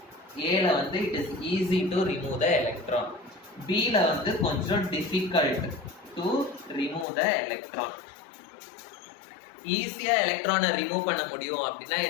Aல வந்து it is easy to remove the electron. Bல வந்து கொஞ்சம் difficult to remove the electron. ஈஸியா எலக்ட்ரானை ரிமூவ் பண்ண முடியும் அப்படின்னா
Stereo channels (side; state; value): right; drops out; at 7.1 s